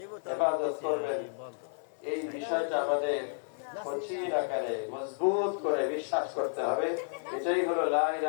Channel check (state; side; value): silent; right; 57 dB below the other